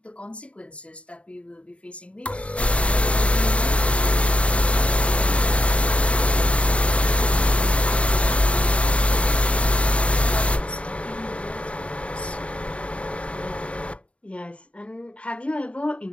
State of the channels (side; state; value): right; late; 0.062 ms